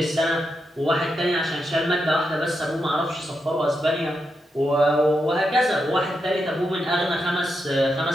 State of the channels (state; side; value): normal; both; correlation 0.85